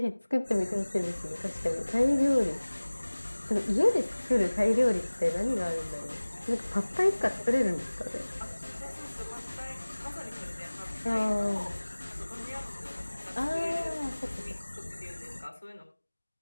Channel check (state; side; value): inverted; both; correlation -1.00